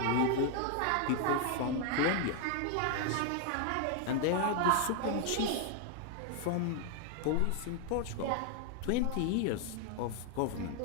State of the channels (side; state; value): both; different; correlation 0.00